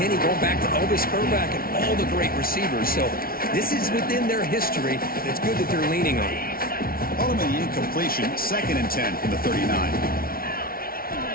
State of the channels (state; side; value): late; right; 0.43 ms